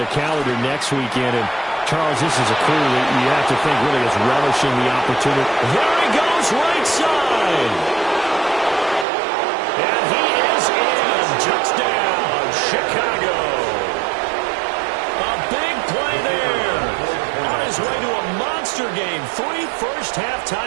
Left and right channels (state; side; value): drops out; left; at 9.1 s